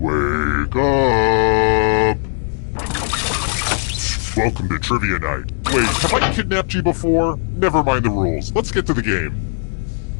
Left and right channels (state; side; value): silent; right; digital silence